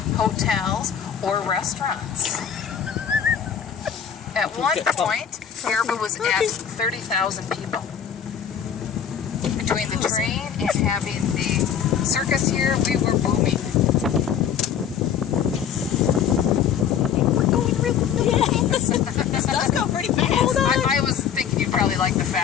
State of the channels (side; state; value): right; quieter; 8.3 dB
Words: hotels, or restaurants. At one point, Baraboo was at 30,000 people. Between the train and having the circus here, we were booming. We're going really fast. This does go pretty fast. I was thinking you'd probably like the